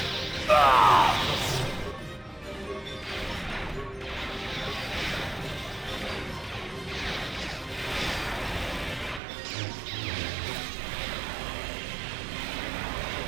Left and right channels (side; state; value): left; drops out; at 9.2 s